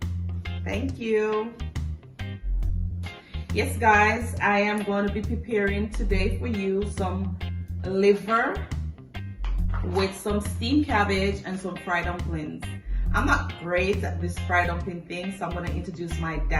Thank you. Yes guys, I am going to be preparing today for you some liver with some steamed cabbage and some fried dumplings. I'm not great at this fried dumpling thing, so I'm going to introduce my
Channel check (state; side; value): identical; both; correlation 1.00